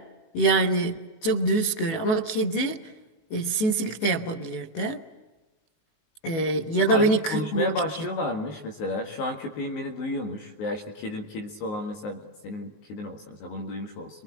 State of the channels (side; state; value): right; late; 19 ms